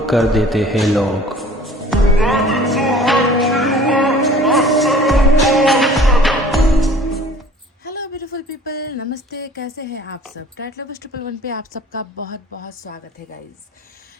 कर देते हैं लोग। हेलो ब्यूटीफुल पीपल, नमस्ते। कैसे हैं आप सब? टैट लवर्स 111 पे आप सबका बहुत बहुत स्वागत है गाइज।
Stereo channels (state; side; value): normal; both; correlation 0.49